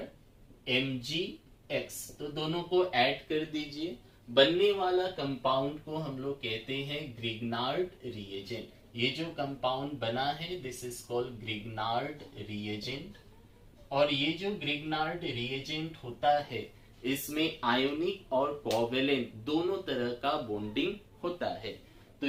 RMgX, तो दोनों को ऐड कर दीजिए। बनने वाला कंपाउंड को हम लोग कहते हैं ग्रिग्नार्ड रिएजेंट। ये जो कंपाउंड बना है this is called Grignard reagent. और ये जो ग्रिग्नार्ड रिएजेंट होता है इसमें आयोनिक और कोवेलेंट दोनों तरह का बॉन्डिंग होता है। तो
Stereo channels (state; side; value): identical; both; correlation 1.00